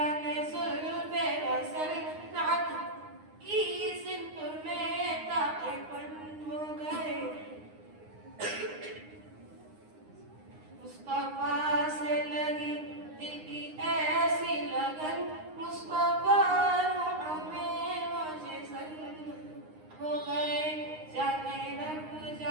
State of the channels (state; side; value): late; left; 9.7 ms